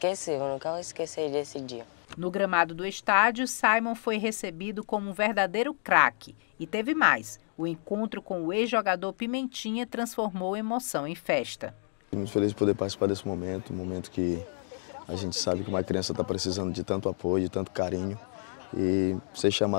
nunca vou esquecer desse dia. No gramado do estádio, Simon foi recebido como um verdadeiro craque. E teve mais. O encontro com o ex-jogador Pimentinha transformou emoção em festa. Muito feliz de poder participar desse momento, um momento que a gente sabe que uma criança está precisando de tanto apoio, de tanto carinho. E ser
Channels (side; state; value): right; silent; 58 dB below the other